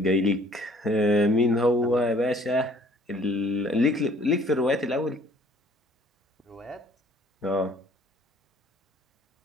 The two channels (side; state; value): both; normal; correlation 0.56